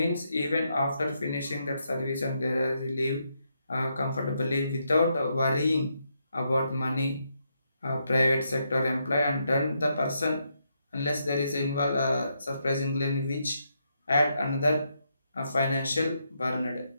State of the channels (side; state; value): both; inverted; correlation -0.79